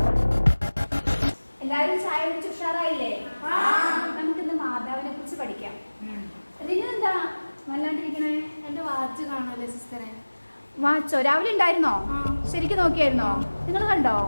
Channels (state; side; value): inverted; both; correlation -1.00